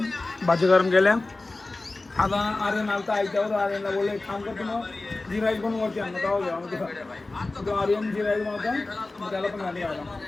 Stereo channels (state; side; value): quieter; right; 3.2 dB